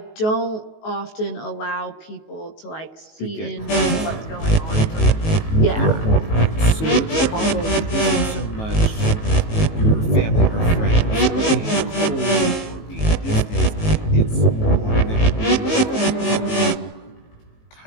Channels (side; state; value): right; late; 19 ms